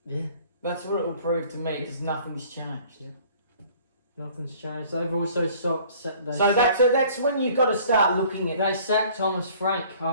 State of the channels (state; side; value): inverted; both; correlation -0.53